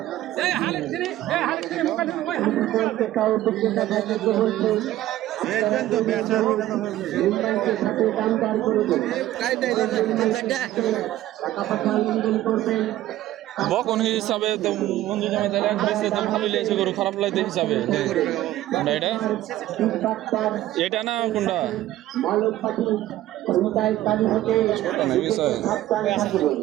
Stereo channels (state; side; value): quieter; left; 14.5 dB